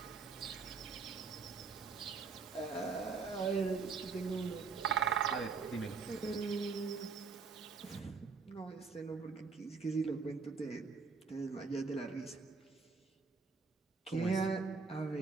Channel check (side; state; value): left; quieter; 4.8 dB